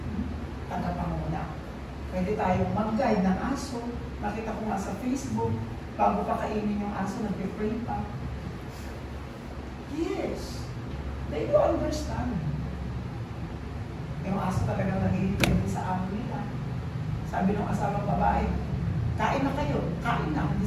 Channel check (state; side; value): identical; both; correlation 1.00